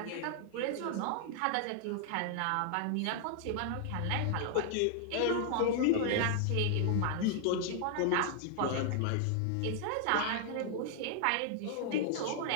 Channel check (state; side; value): different; both; correlation -0.01